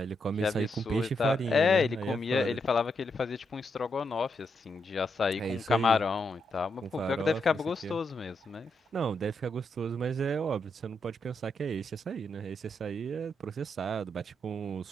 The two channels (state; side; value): normal; both; correlation 0.81